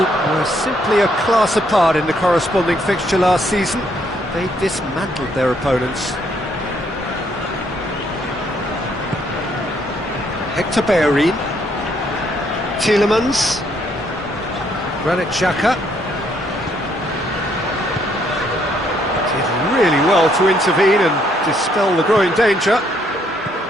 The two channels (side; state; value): both; normal; correlation 0.70